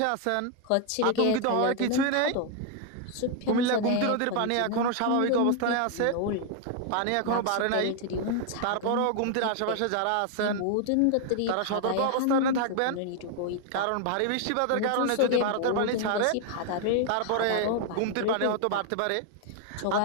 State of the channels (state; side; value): different; both; correlation 0.00